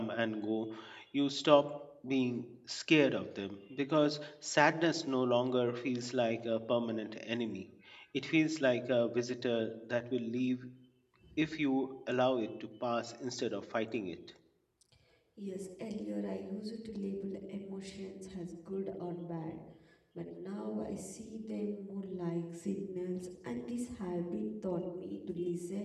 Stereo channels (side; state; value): both; identical; correlation 1.00